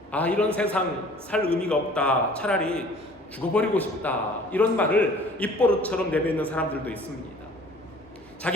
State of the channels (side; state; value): both; normal; correlation 0.50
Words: 이런 세상 살 의미가 없다, 차라리 죽어버리고 싶다, 이런 말을 입버릇처럼 내뱉는 사람들도 있습니다.